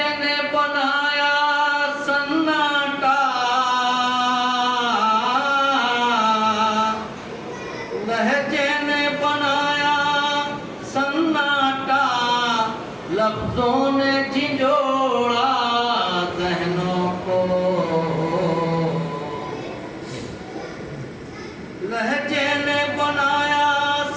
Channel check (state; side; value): identical; both; correlation 1.00